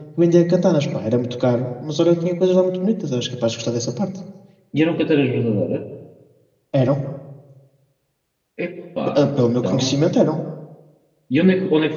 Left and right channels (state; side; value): identical; both; correlation 1.00